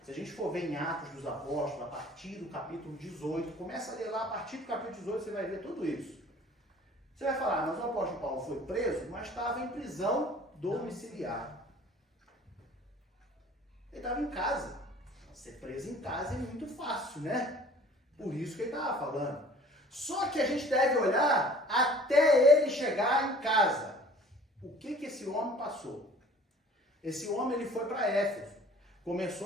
se a gente for ver em Atos dos Apóstolos, a partir do capítulo 18, começa a ler lá, a partir do capítulo 18 você vai ver tudo isso. Você vai falar, mas o apóstolo Paulo foi preso, mas estava em prisão domiciliar. Ele estava em casa. Ser preso em casa é muito fácil, né? Por isso que ele estava falando. Só que a gente deve olhar até ele chegar em casa. O que esse homem passou? Esse homem ele foi para Éfeso.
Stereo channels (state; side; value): normal; both; correlation 0.50